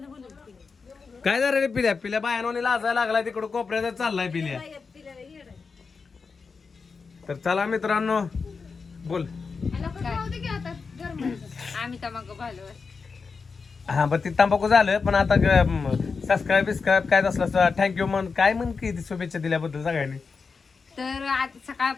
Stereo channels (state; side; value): quieter; right; 4.9 dB